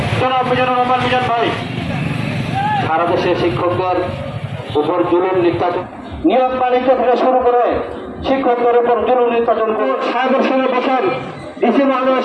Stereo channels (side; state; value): both; identical; correlation 1.00